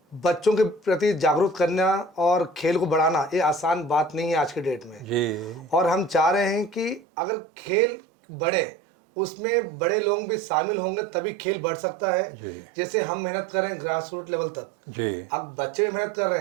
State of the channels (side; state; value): left; drops out; at 7.0 s